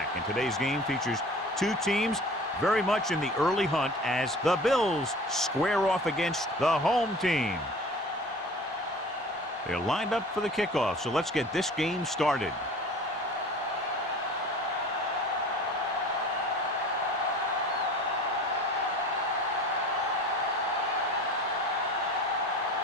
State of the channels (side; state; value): both; normal; correlation 0.42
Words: And today's game features two teams very much in the early hunt as the Bills square off against the home team. They're lined up for the kickoff, so let's get this game started.